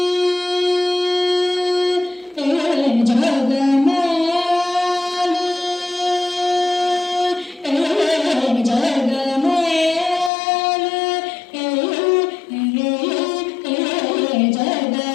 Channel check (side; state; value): right; drops out; at 10.3 s